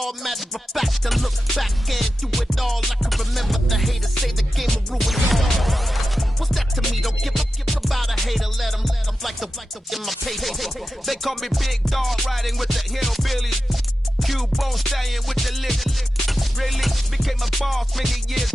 Matter of fact, I look back and do it all. I can remember the haters say the game will ruin all. What's that to me? Don't give about a hater. Let them like the in my paper. They call me Big Dog, riding with the hillbillies. Cubone staying with the lick. Really became a boss many years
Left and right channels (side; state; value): both; normal; correlation 0.92